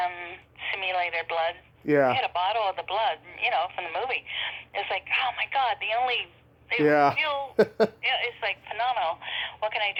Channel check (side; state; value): both; identical; correlation 1.00